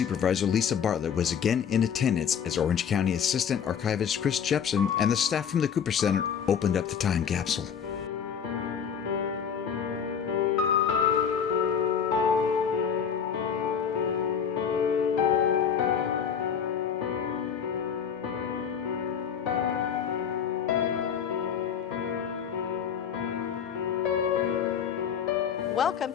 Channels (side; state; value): right; quieter; 7.6 dB